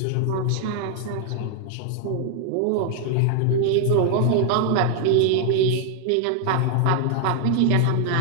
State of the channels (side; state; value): both; different; correlation 0.00